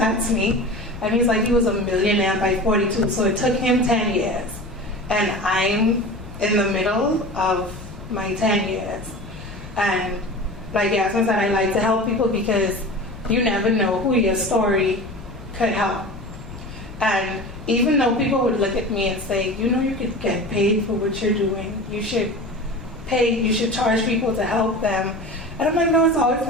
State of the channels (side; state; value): left; noise; rumble, 16 dB below the sound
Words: me. And he's like, he was a millionaire by 42, so it took him 10 years. And I'm in the middle of my 10 years. And like Yasmin said, I like to help people because you never know who your story could help. And even though people would look at me and say, you could get paid for what you're doing, you should charge people to help them. And I'm like, no, it's always